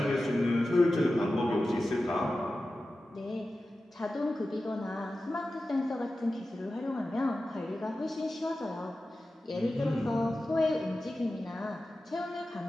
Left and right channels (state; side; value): normal; both; correlation 0.94